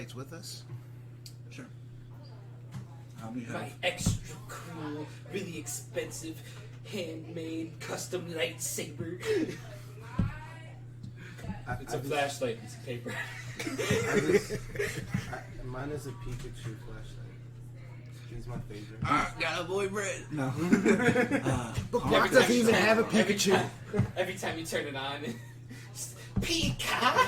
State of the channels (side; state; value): both; identical; correlation 1.00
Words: with us? Sure. You have My extra cool, really expensive, handmade, custom lightsaber. It's a flashlight, it's paper. Mine is a Pikachu flashlight. He's my favorite. got a boyfriend. No. Bookmark doesn't even have a Pikachu. Every time you turn it on,